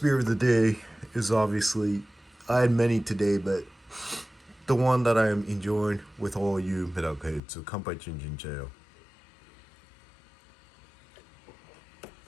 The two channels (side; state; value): right; drops out; at 7.4 s